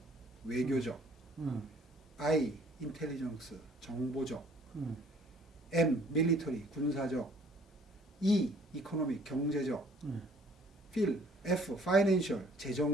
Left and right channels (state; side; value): normal; both; correlation 0.58